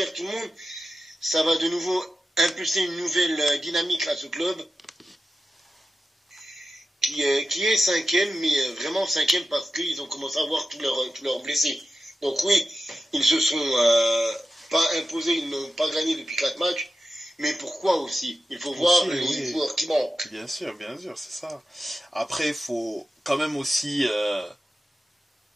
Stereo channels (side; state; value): both; normal; correlation 0.92